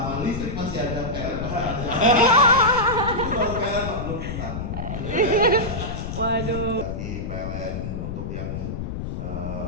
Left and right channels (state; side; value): noise; left; rumble, 5 dB below the sound